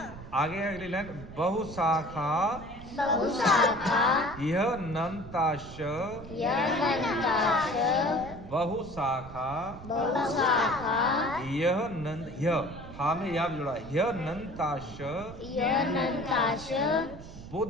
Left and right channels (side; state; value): right; noise; rumble, 14 dB below the sound